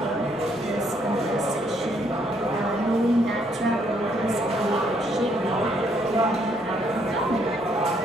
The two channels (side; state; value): right; noise; rumble, 27 dB below the sound